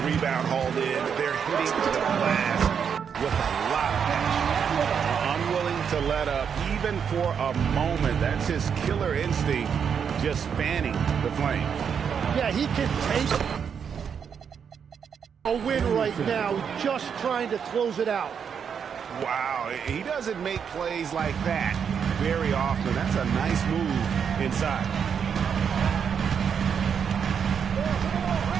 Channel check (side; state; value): left; quieter; 7.2 dB